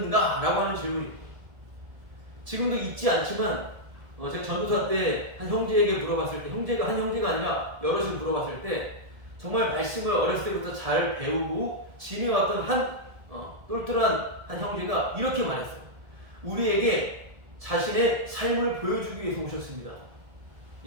라고 하는 질문입니다. 지금도 잊지 않지만 제가 전도사 때 한 형제에게 물어봤을 때, 한 형제가 아니라 여럿을 물어봤을 때 정말 말씀을 어렸을 때부터 잘 배우고 지내왔던 한 똘똘한 한 형제가 이렇게 말했어요. 우리에게 자신의 삶을 보여주기 위해서 오셨습니다.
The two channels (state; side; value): late; left; 1.7 ms